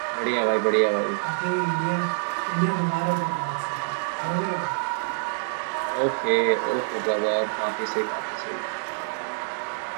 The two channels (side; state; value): left; silent; 60 dB below the other